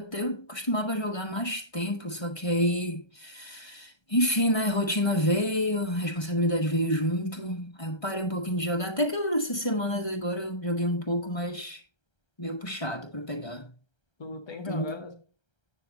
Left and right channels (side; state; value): right; late; 1.3 ms